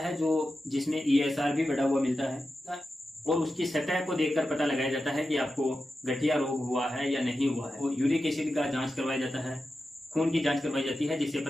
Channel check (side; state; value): both; normal; correlation 0.91